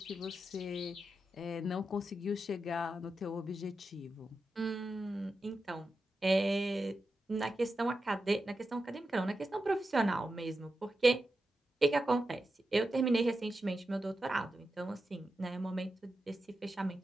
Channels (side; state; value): both; normal; correlation 0.90